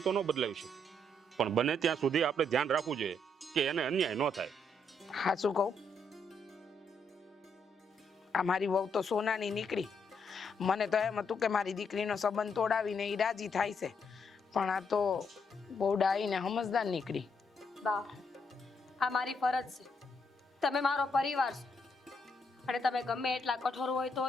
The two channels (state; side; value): normal; both; correlation 0.75